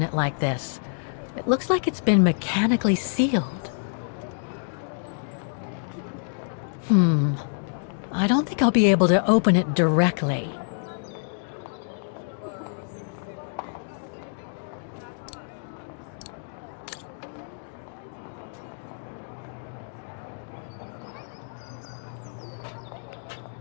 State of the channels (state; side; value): silent; right; digital silence